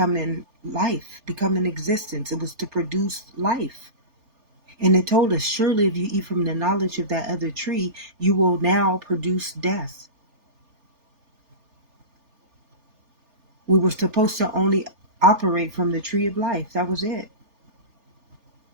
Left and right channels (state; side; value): late; left; 3.4 ms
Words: life, becoming existence. It was to produce life. And it told us, surely if you eat from the knowledge of that other tree, you will now produce death. We were supposed to only operate from the tree of life. That was it.